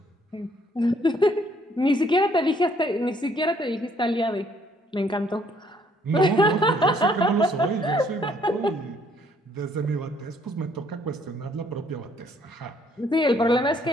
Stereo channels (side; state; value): both; normal; correlation 0.65